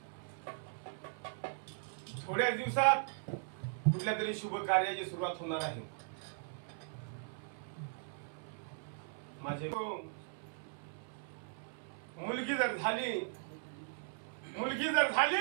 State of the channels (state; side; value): silent; left; 52 dB below the other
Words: थोड्या दिवसात कुठल्या तरी शुभ कार्याची सुरुवात होणार आहे. माझे मुलगी जर